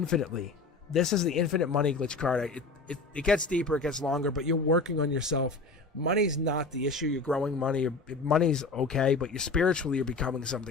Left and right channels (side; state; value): right; quieter; 3.8 dB